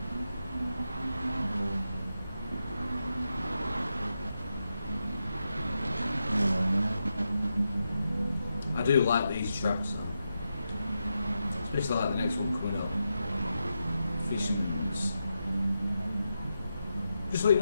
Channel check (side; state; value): both; inverted; correlation -0.87